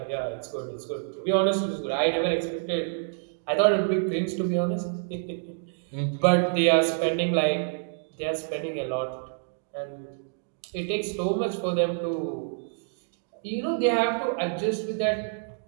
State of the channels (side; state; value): left; silent; digital silence